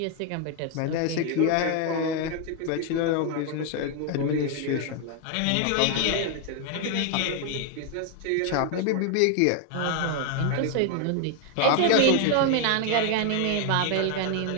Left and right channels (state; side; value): different; both; correlation 0.01